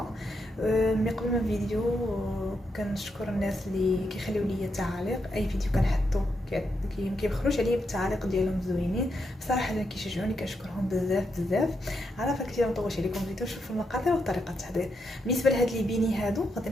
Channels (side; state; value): both; normal; correlation 0.82